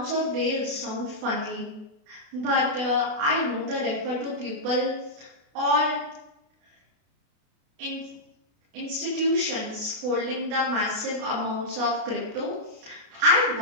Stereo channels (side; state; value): left; late; 32 ms